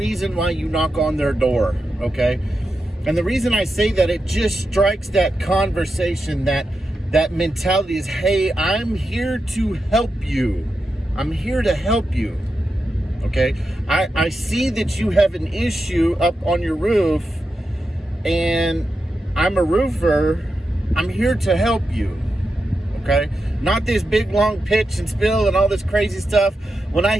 why you knock on their door, okay? And the reason I say that, it just strikes that conversation, that mentality is, hey, I'm here to help you. I'm here to help you. Okay? I see that you have an issue up on your roof, and I'm a roofer. I'm here to help you. okay? Not this big, long pitch and spill and all this crazy stuff. When I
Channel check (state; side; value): normal; both; correlation 0.88